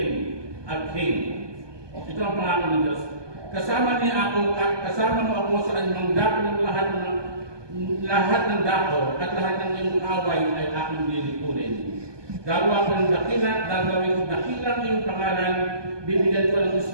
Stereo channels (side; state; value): left; late; 1.2 ms